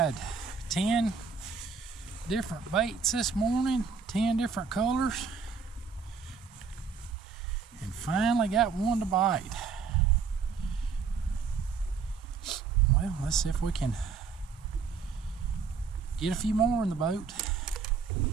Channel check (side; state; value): left; quieter; 5.5 dB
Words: 10 different baits this morning, 10 different colors, and finally got one to bite. Well, let's see if we can get a few more in the boat.